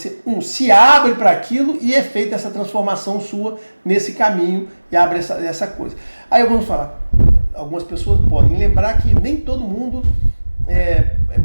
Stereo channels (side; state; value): both; inverted; correlation -1.00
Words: se abre para aquilo e é feita essa transformação sua nesse caminho e abre essa coisa. Aí vamos falar, algumas pessoas podem lembrar que nem todo mundo